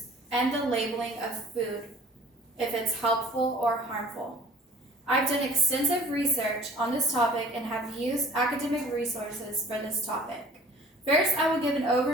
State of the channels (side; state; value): both; normal; correlation 0.49